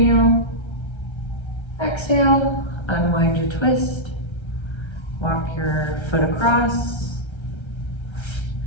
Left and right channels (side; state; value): right; late; 1.3 ms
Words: Exhale, unwind your twist. Walk your foot across.